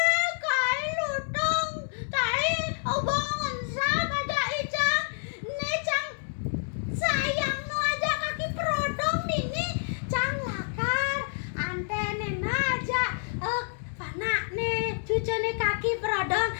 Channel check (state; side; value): silent; right; 59 dB below the other